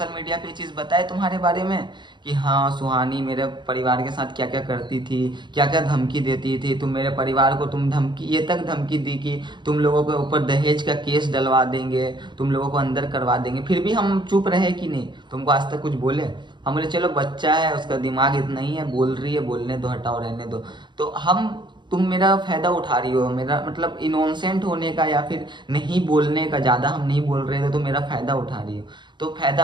मीडिया पे ये चीज़ बताए तुम्हारे बारे में कि हाँ सुहानी मेरे परिवार के साथ क्या क्या करती थी, क्या क्या धमकी देती थी, तुम मेरे परिवार को ये तक धमकी दी कि तुम लोगों के ऊपर दहेज का केस डलवा देंगे, तुम लोगों को अंदर करवा देंगे, फिर भी हम चुप रहे कि नहीं, तुमको आज तक कुछ बोले? हम बोले चलो बच्चा है, उसका दिमाग इतना ही है, बोल रही है, बोलने दो, हटाओ, रहने दो। तो तुम मेरा फ़ायदा उठा रही हो, मेरा मतलब इनोसेंट होने का या फिर नहीं बोलने का, ज़्यादा हम नहीं बोल रहे थे तो मेरा फ़ायदा उठा रही हो। तो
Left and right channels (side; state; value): left; late; 0.22 ms